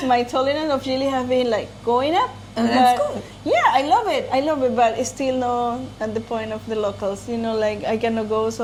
my tolerance of chili have been like going up. That's But, good. Yeah, I love it, but it's still not at the point of the locals. Like I cannot go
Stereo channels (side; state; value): both; identical; correlation 1.00